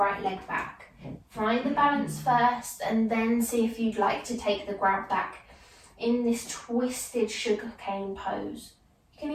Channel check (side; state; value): both; identical; correlation 1.00